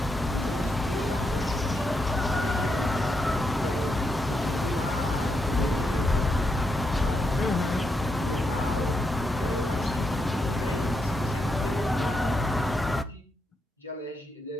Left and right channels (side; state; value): both; normal; correlation 0.82